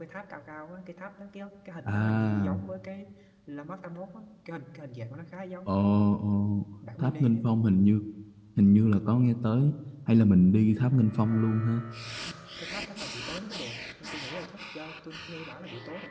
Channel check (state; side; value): identical; both; correlation 1.00